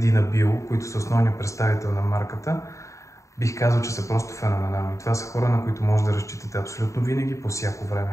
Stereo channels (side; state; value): right; late; 0.15 ms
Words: Bio, които са основният представител на марката, бих казал, че са просто феноменални. Това са хора, на които може да разчитате абсолютно винаги, по всяко